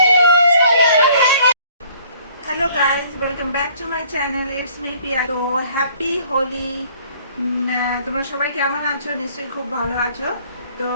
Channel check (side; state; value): both; inverted; correlation -0.58